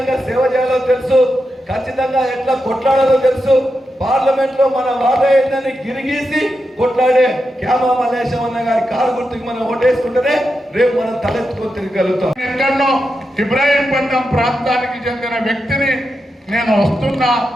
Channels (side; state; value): both; normal; correlation 0.88